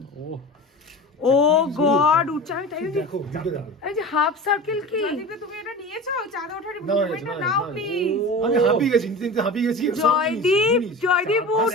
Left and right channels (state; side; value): normal; both; correlation 0.33